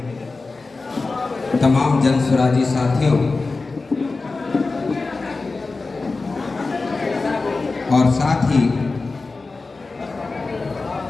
तमाम जनसुराजी साथियों और साथ ही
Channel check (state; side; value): quieter; right; 3.8 dB